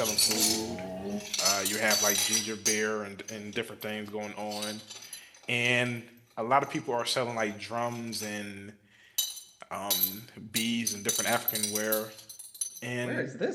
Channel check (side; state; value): both; identical; correlation 1.00